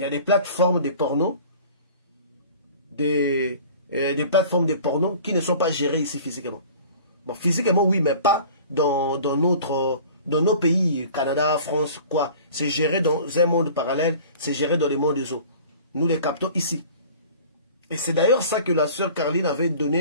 y a des plateformes de porno, des plateformes de porno qui ne sont pas gérées ici physiquement. Bon, physiquement, oui, mais pas dans nos pays, Canada, France, quoi. C'est géré dans un monde parallèle, c'est géré dans les mondes des eaux. Nous les captons ici. Et c'est d'ailleurs ça que la sœur Caroline avait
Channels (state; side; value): inverted; both; correlation -0.45